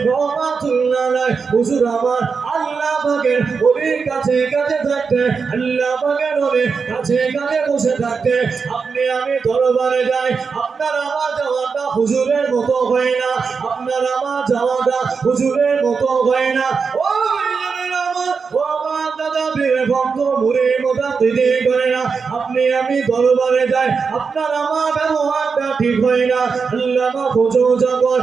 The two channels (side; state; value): left; quieter; 5.3 dB